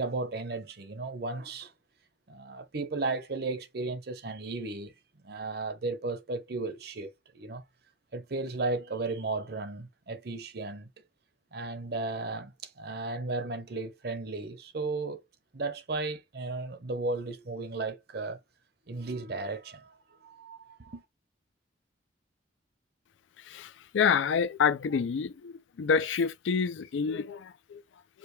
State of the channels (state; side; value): normal; both; correlation 0.05